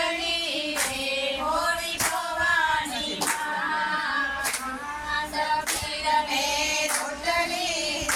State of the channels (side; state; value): both; identical; correlation 1.00